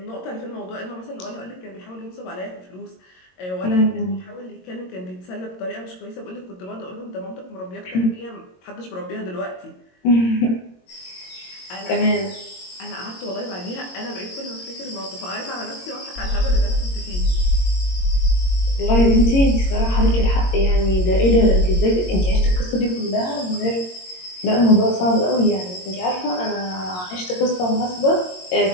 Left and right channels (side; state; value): right; late; 22 ms